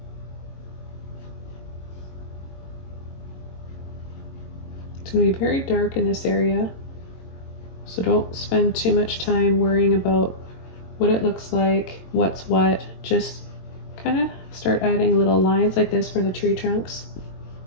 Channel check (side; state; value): right; late; 22 ms